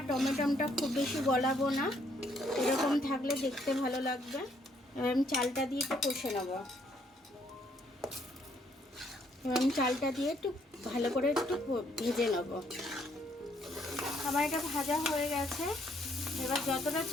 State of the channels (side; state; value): both; normal; correlation 0.69